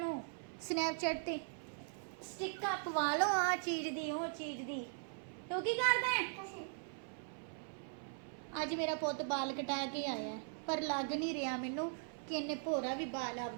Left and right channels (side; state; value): left; silent; 51 dB below the other